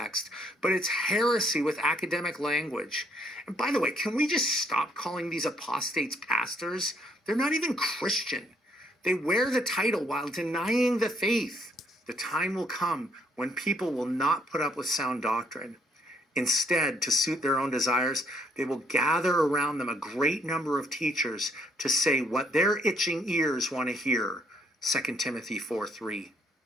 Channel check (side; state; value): both; normal; correlation 0.68